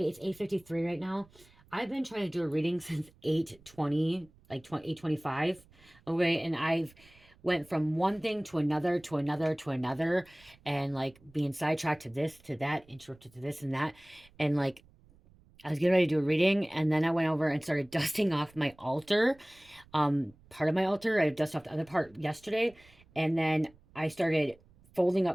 8:53 right now. I've been trying to do a reading since 8:20, like 8:25, okay? And I've went from one thing to another, to another, to another, and like being sidetracked to this, to that, interrupted to this and that. And like I was getting ready to do a reading, and then I went over and started dusting off my altar, part of my altar. I dusted off the other part yesterday, and then I started folding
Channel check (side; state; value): right; noise; rumble, 28 dB below the sound